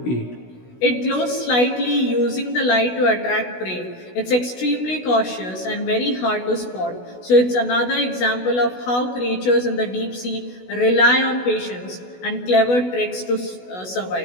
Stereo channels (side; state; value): right; late; 16 ms